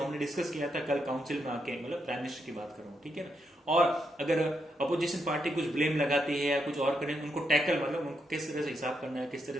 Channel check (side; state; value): both; normal; correlation 0.80